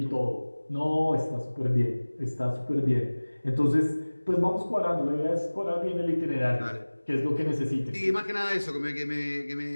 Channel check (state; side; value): inverted; both; correlation -1.00